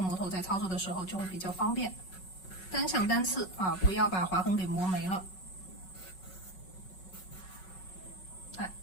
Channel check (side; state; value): right; late; 5.4 ms